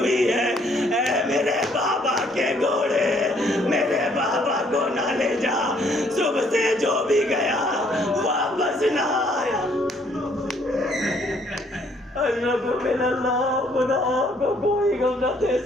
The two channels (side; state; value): both; normal; correlation 0.65